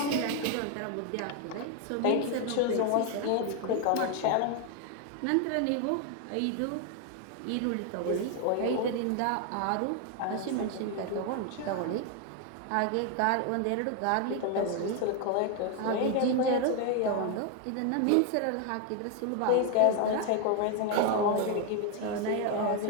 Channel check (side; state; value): both; different; correlation 0.01